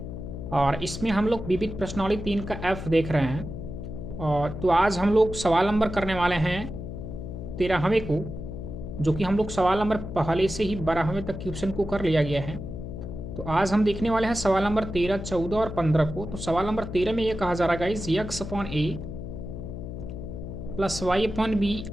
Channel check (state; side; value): noise; left; hum, 8 dB below the sound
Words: और इसमें हम लोग विविध प्रश्नावली 3 का एफ देख रहे हैं। और तो आज हम लोग सवाल नंबर करने वाले हैं 13वें को, जो कि हम लोग सवाल नंबर पहले से ही 12वें तक क्वेश्चन को कर लिया गया है। तो आज हम देखने वाले हैं सवाल नंबर 13, 14 और 15 को। तो सवाल नंबर 13 में ये कहा जा रहा है गाइस, यक्स अपॉन ए प्लस वाई अपॉन बी